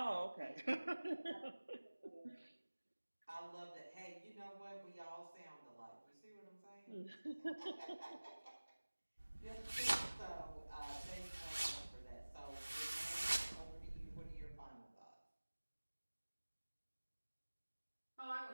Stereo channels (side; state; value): both; inverted; correlation -1.00